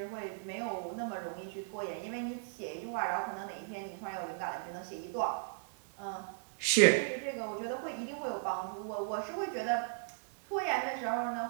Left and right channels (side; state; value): left; silent; digital silence